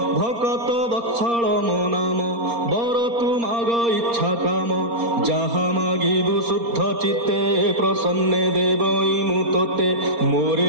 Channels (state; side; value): late; left; 4.3 ms